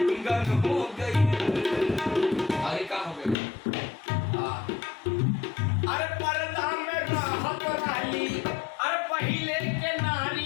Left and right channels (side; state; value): right; drops out; at 3.4 s